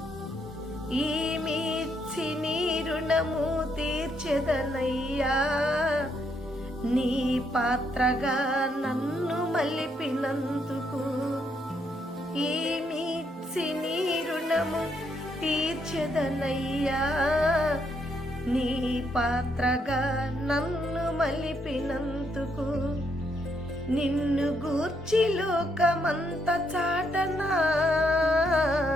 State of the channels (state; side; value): normal; both; correlation 0.75